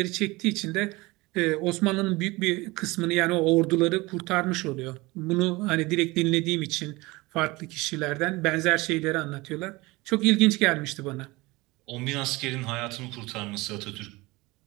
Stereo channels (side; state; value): left; quieter; 22.2 dB